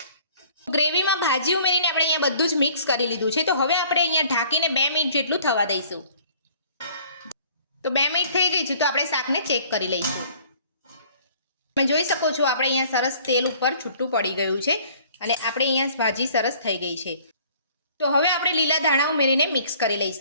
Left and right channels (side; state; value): both; inverted; correlation -0.54